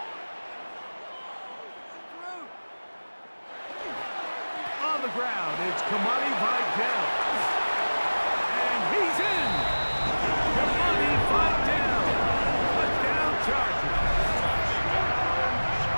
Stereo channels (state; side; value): inverted; both; correlation -1.00